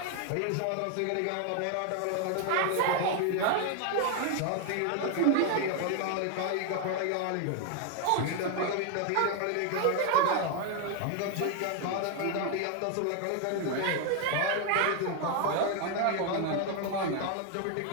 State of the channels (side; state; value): both; different; correlation 0.00